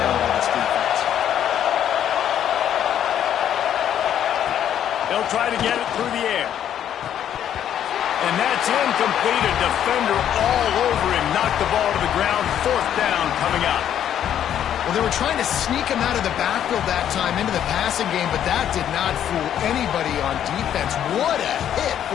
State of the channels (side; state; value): right; quieter; 10.1 dB